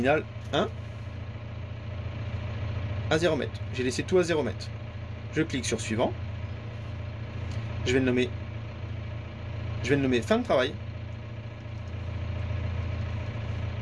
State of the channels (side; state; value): both; identical; correlation 1.00